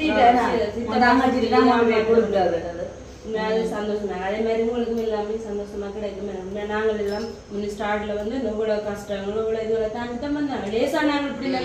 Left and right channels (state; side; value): identical; both; correlation 1.00